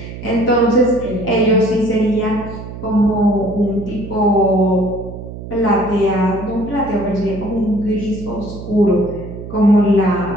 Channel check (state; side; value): noise; right; hum, 11 dB below the sound